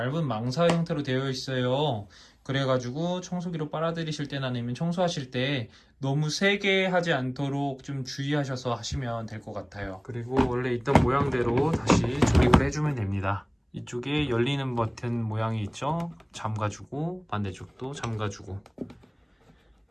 망사 형태로 되어 있어요. 그래가지고 청소기로 빨아들이실 때나 아니면 청소하실 때 너무 세게 하지 않도록 좀 주의하셔서 하시면 될 것 같아요. 그리고 원래 있던 모양대로 다시 조립을 해주면 됩니다. 이쪽에 열리는 버튼 모양이 있죠? 잠가주고 반대쪽도 잠가주고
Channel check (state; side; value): identical; both; correlation 1.00